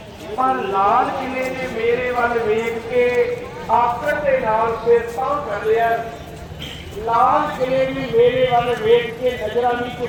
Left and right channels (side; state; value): both; identical; correlation 1.00